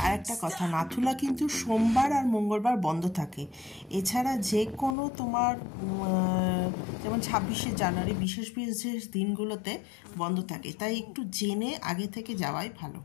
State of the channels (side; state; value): right; drops out; at 5.0 s